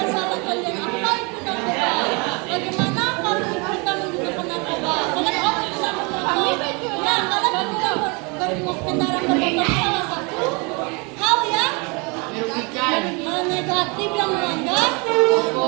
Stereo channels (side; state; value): left; quieter; 30.7 dB